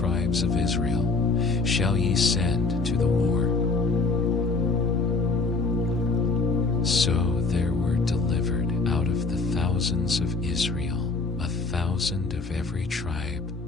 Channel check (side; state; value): right; quieter; 3.8 dB